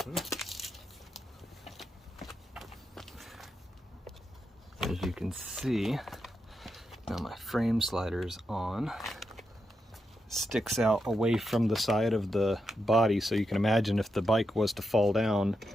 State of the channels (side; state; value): both; normal; correlation 0.85